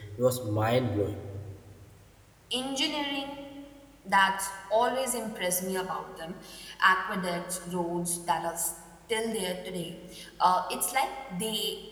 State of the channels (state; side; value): identical; both; correlation 1.00